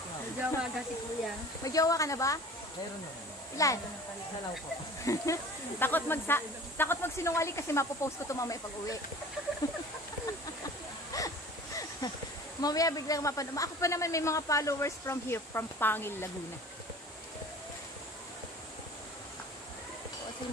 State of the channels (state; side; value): normal; both; correlation 0.43